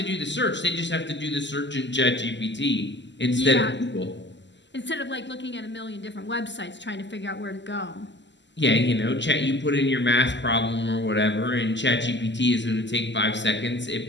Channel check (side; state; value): right; late; 0.53 ms